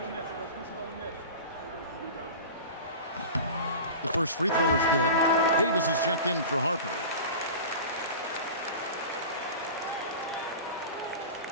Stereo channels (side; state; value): both; inverted; correlation -0.33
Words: The first free throw is good. Davis is checked in for Harper.